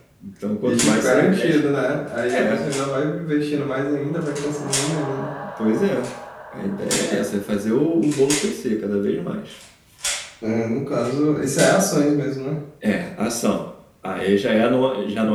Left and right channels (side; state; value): both; identical; correlation 1.00